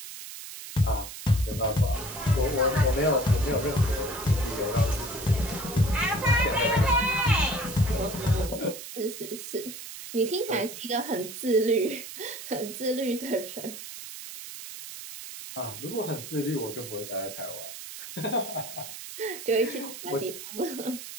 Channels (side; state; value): right; noise; hiss, 11 dB below the sound